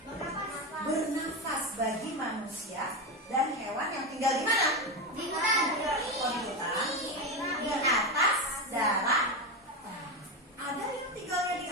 bernafas bagi manusia dan hewan yang tinggal di mana? Di hutan. Oh, di hutan, di atas darat. Ada yang tinggalnya di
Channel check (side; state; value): both; normal; correlation 0.15